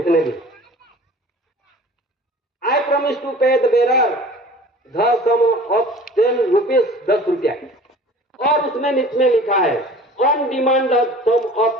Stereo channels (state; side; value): normal; both; correlation 0.44